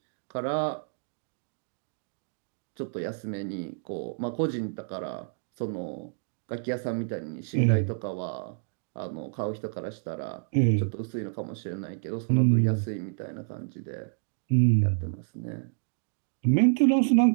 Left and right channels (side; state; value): left; silent; digital silence